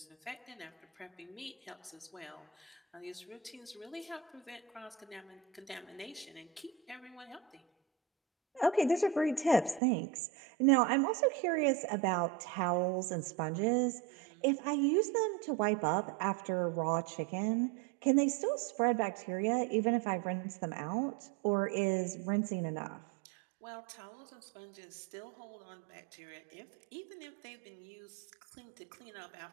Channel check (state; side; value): drops out; left; at 9.8 s